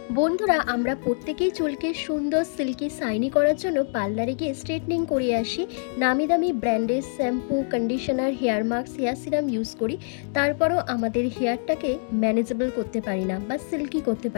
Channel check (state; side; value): silent; right; digital silence